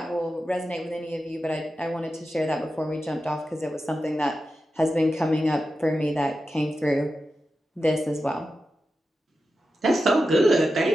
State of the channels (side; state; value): both; normal; correlation 0.91